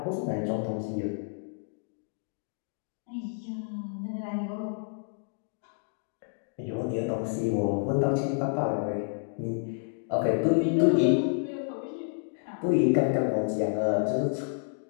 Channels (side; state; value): right; silent; digital silence